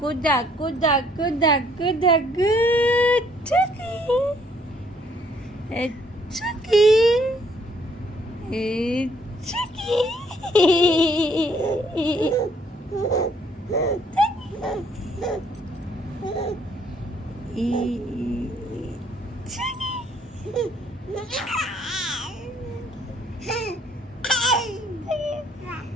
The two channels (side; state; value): both; normal; correlation 0.65